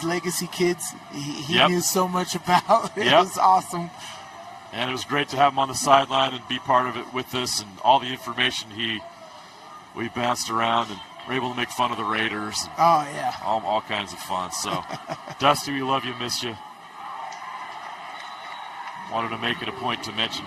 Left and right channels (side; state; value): both; identical; correlation 1.00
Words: legacy kids, he knew so much about. It was awesome. And it was great to have him on the sideline and be part of it with us, and all the information we bounced around, and were able to make fun of the Raiders. And all kinds of fun. So, Dusty, we love you, miss you. Wanted to make it a point to mention